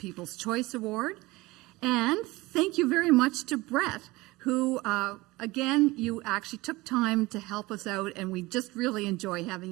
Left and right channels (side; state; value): left; quieter; 21.1 dB